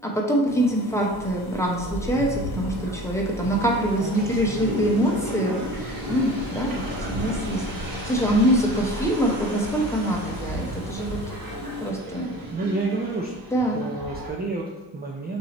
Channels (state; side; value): normal; both; correlation 0.42